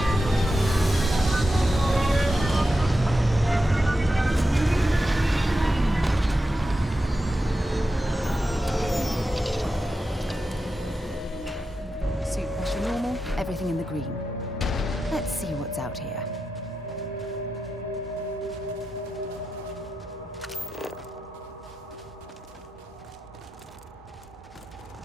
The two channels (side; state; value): both; normal; correlation 0.89